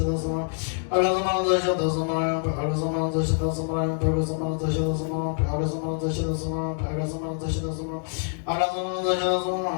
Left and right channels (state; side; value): silent; right; digital silence